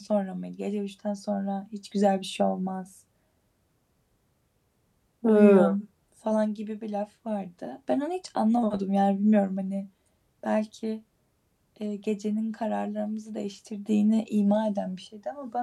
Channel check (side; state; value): both; identical; correlation 1.00